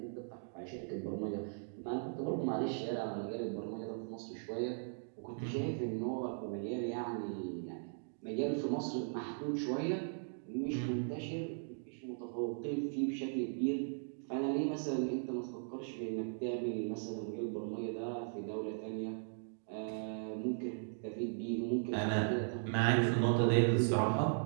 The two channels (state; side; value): silent; left; digital silence